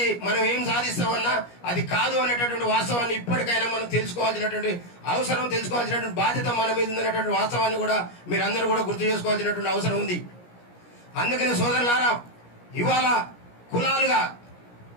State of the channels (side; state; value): right; late; 17 ms